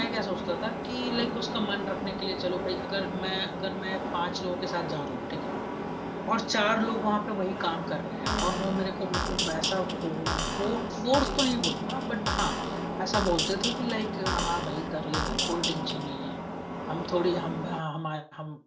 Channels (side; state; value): both; identical; correlation 1.00